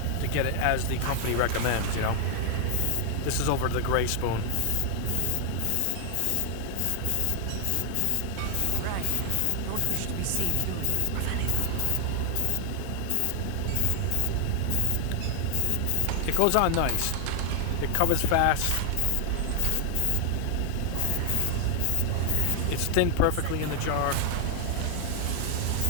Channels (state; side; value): different; both; correlation 0.00